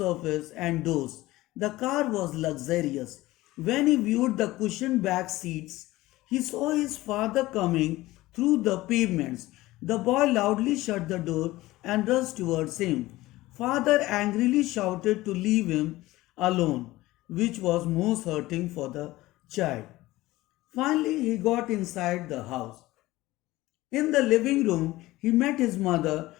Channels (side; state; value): right; quieter; 18.0 dB